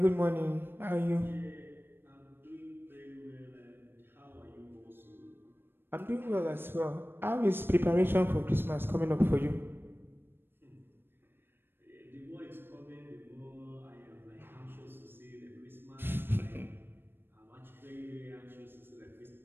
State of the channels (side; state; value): left; late; 0.10 ms